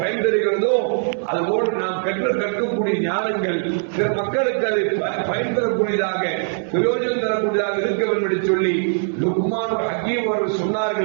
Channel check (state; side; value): silent; left; 65 dB below the other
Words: தருகிறதோ அதுபோன்று நாம் கற்கக்கூடிய ஞானங்கள் பிற மக்களுக்கு அது பயன் தரக்கூடியதாக பிரயோஜனம் தரக்கூடியதாக இருக்க வேண்டும் என்று சொல்லி லுக்மான் ஹக்கீம் அவர்கள்